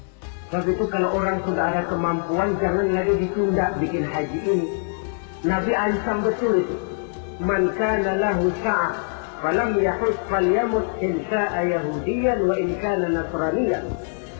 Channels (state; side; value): silent; right; 61 dB below the other